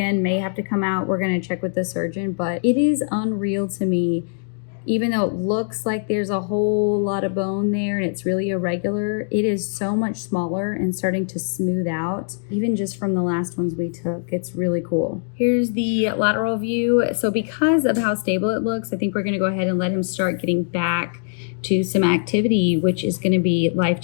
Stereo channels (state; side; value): silent; right; digital silence